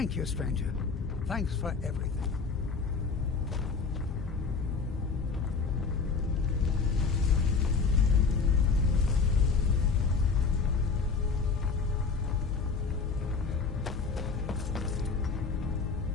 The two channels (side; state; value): right; quieter; 4.9 dB